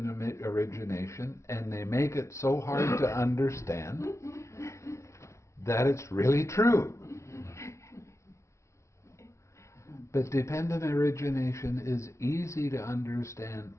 origination, and they make it so hard to understand that it's really true. But dependent origination is easy to understand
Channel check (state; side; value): late; right; 0.14 ms